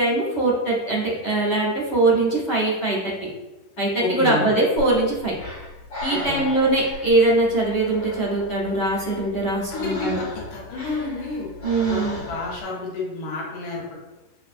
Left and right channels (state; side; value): late; right; 11 ms